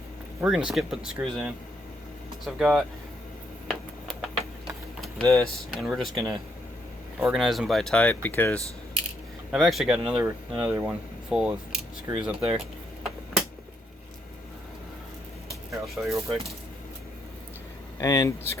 we're gonna skip putting the screws in. So I've got this, and we're just gonna organize them by type because I've actually got another one full of screws up there. Here, I'll show you real quick. And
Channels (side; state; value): both; normal; correlation 0.75